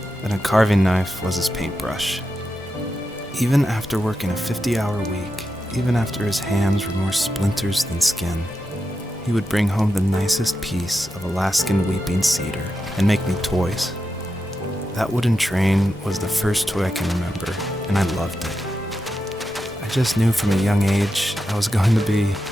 then a carving knife was his paintbrush. Even after working a 50-hour week, even after his hands were more splinters than skin, he would bring home the nicest piece of Alaskan weeping cedar and make me toys. That wooden train was the first toy I can remember, and I loved it. I just knew from a young age I was going to be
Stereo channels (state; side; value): normal; both; correlation 0.88